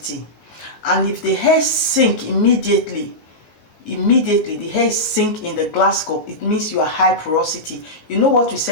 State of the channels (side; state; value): right; late; 19 ms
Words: And if the hair sink immediately the hair sink in the glass cup, it means you are high porosity. You know what we